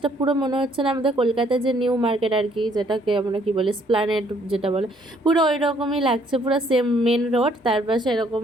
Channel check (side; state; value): both; normal; correlation 0.65